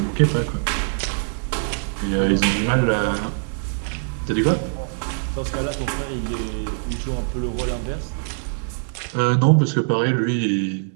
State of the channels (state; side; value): silent; left; 62 dB below the other